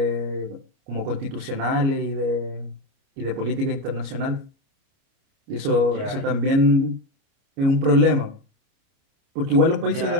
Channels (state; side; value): late; left; 29 ms